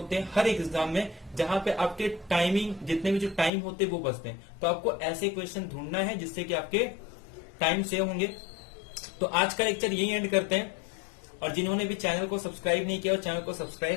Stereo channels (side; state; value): right; drops out; at 3.5 s